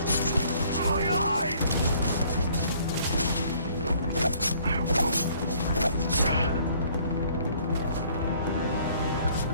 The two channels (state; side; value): inverted; both; correlation -0.59